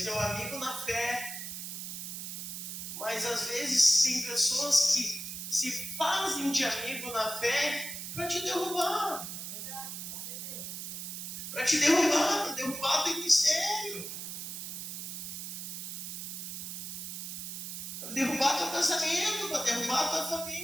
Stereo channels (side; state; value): right; noise; hiss, 7 dB below the sound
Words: teu amigo na fé. Mas às vezes tem pessoas que se fazem de amigo na fé para te derrubar. Para te derrubar, teu ministério. Para derrubar teu casamento, para derrubar tua